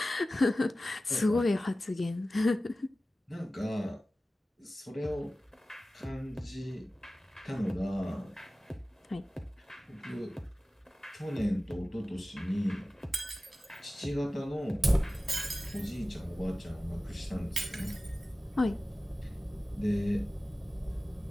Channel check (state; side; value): normal; both; correlation 0.96